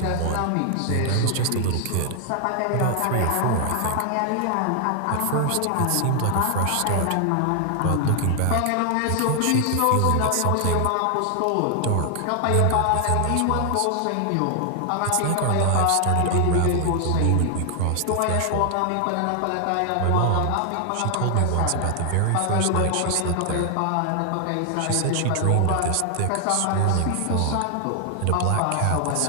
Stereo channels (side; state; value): both; different; correlation 0.00